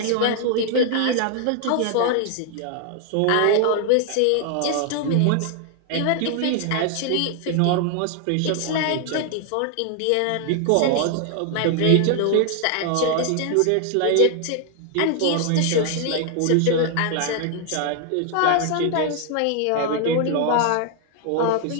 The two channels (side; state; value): both; different; correlation 0.00